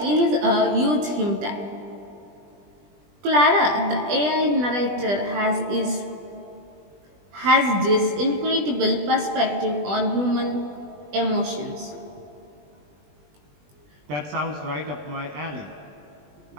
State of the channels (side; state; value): left; late; 20 ms